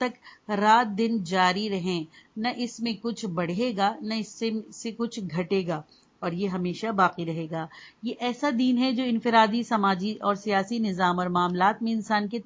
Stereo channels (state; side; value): identical; both; correlation 1.00